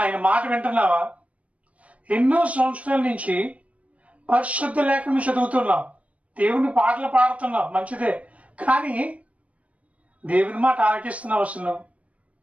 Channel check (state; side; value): late; left; 0.066 ms